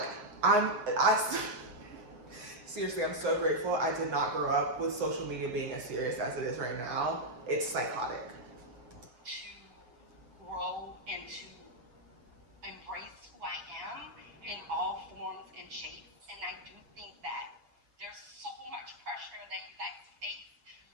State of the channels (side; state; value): left; late; 8.3 ms